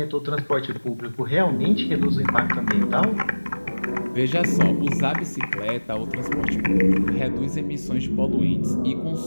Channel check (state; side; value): inverted; both; correlation -1.00